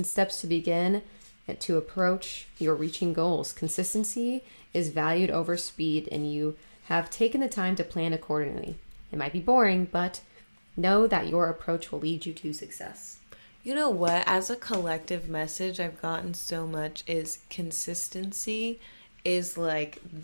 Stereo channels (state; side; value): inverted; both; correlation -1.00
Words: steps to begin and to approach your reaching goals. Consistency is valued over speed, and you have taken the time to plan accordingly. It might be boring, but know that your approach will lead you to success. You know what? As a collective message I've gotten so much is consistency is like